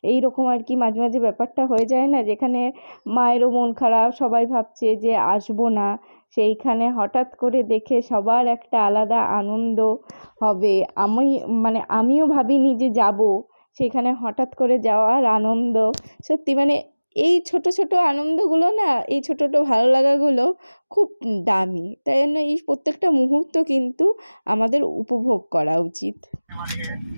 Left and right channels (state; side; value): inverted; both; correlation -1.00